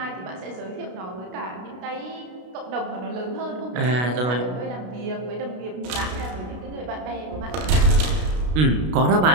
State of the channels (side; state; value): left; late; 32 ms